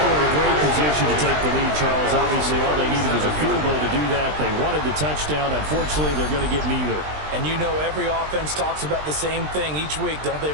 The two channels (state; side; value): late; left; 20 ms